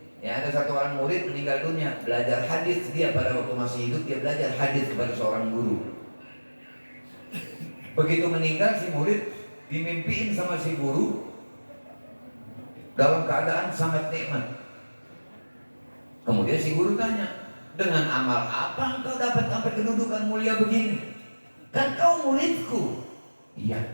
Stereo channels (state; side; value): inverted; both; correlation -1.00